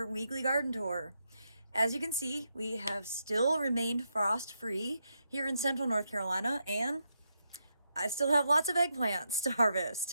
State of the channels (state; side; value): inverted; both; correlation -0.82